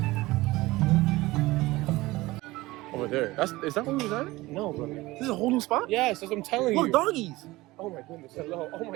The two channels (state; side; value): quieter; left; 19.6 dB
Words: Over there. Is that where we was at? No, bro. This is a whole new spot? Yes, that's what I'm telling you. Look, doggies. Oh my goodness. Hello. Oh